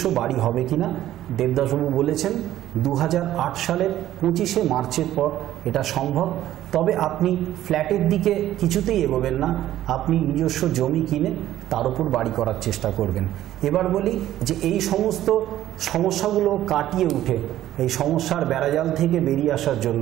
বাড়ি হবে কিনা। দেবদাসবাবু বলেছেন 2008 সালের 25শে মার্চের পর এটা সম্ভব, তবে আপনি ফ্ল্যাটের দিকে কিছুতেই এগোবেন না, আপনি নিজস্ব জমি কিনে তার উপর বাড়ি করার চেষ্টা করবেন। এবার বলি যে এই সমস্ত সমস্যাগুলো কাটিয়ে উঠে এই সমস্যার বেড়াজাল থেকে বেরিয়ে আসার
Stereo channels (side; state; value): left; quieter; 13.2 dB